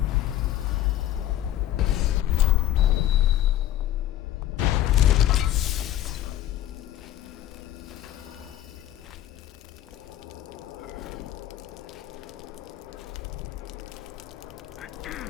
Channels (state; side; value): quieter; right; 12.5 dB